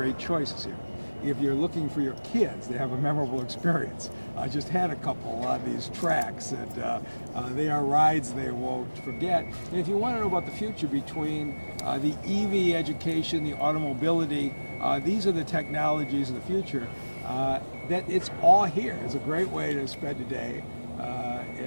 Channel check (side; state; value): both; inverted; correlation -1.00